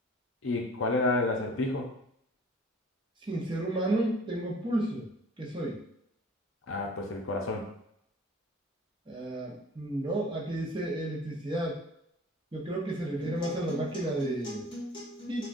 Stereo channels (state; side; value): normal; both; correlation 0.48